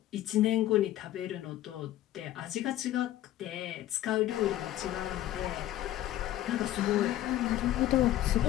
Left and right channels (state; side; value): quieter; right; 13.8 dB